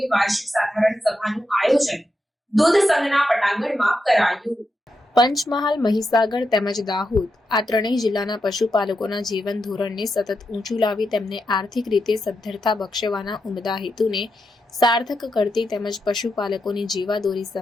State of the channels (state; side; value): normal; both; correlation 0.86